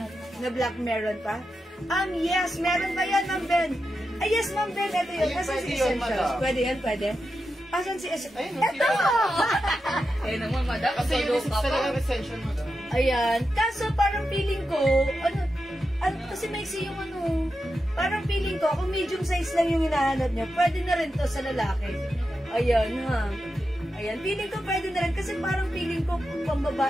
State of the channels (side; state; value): both; normal; correlation 0.89